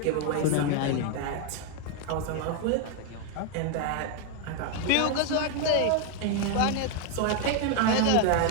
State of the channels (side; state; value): both; different; correlation 0.01